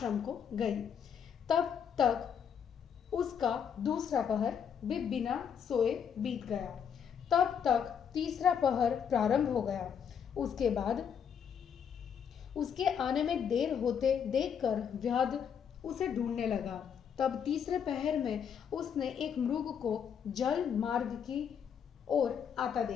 को गई। तब तक उसका दूसरा पहर भी बिना सोए बीत गया। तब तक तीसरा पहर प्रारंभ हो गया। उसके बाद उसके आने में देर होते देखकर व्याध उसे ढूंढने लगा। तब तीसरे पहर में उसने एक मृग को जल मार्ग की ओर आता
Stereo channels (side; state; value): right; quieter; 7.7 dB